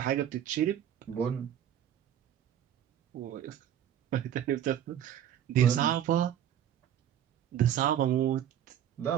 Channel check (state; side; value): quieter; left; 10.4 dB